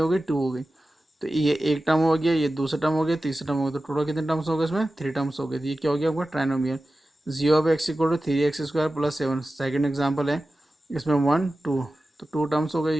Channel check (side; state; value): both; normal; correlation 0.94